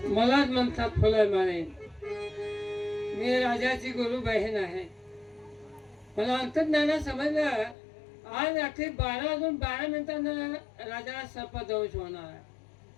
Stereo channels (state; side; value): drops out; right; at 7.8 s